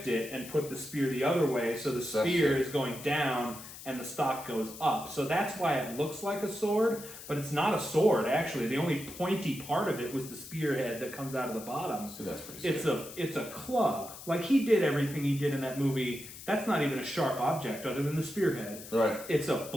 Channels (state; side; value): noise; left; hiss, 14 dB below the sound